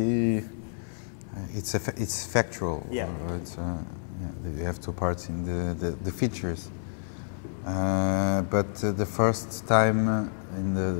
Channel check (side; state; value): right; silent; 59 dB below the other